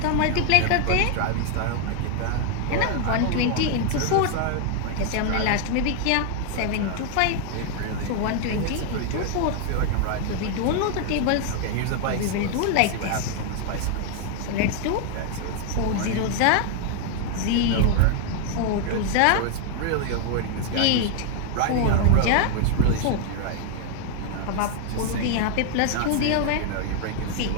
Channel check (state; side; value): different; both; correlation 0.00